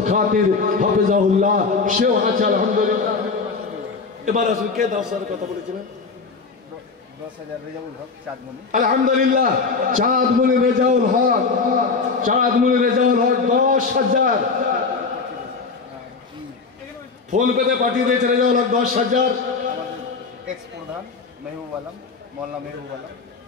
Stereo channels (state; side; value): quieter; right; 4.6 dB